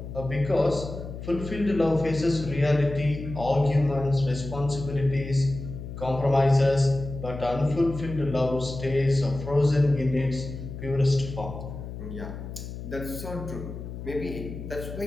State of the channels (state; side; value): noise; left; hum, 9 dB below the sound